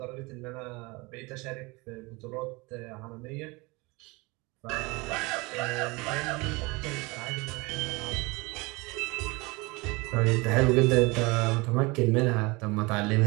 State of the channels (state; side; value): quieter; left; 25.3 dB